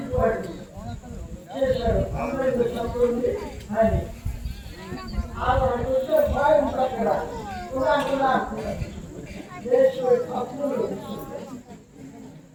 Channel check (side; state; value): both; identical; correlation 1.00